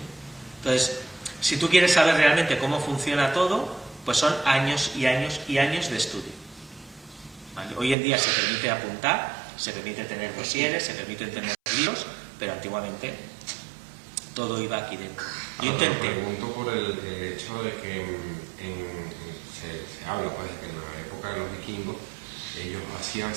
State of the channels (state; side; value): drops out; left; at 8.0 s